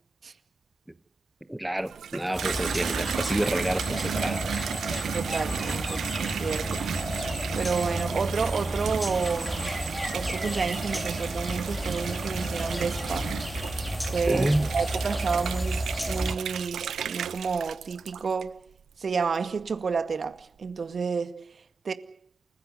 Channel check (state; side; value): quieter; left; 3.3 dB